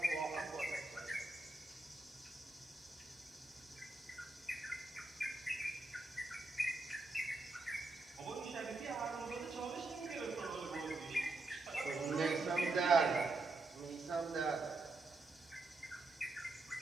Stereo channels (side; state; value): left; quieter; 3.2 dB